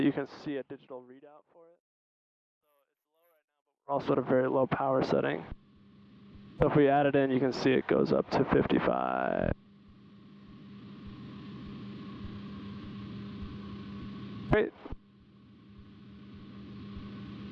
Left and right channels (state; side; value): identical; both; correlation 1.00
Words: you can see a digital readout for it. So it's low right now, but we're also at a very low power setting. So if we add it in, you can see it goes up to 55. Great.